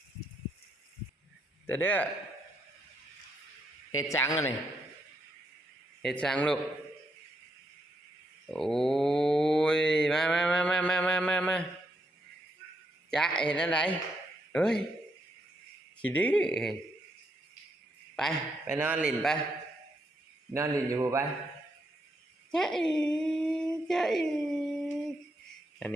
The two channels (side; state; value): both; normal; correlation 0.78